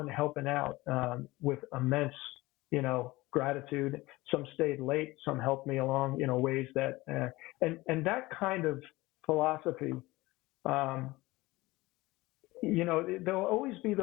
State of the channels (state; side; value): quieter; right; 20.1 dB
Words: helping out with immense, gratitude. Some stayed late, some helped me along, ways that, and that kind of philosophy, there'll always be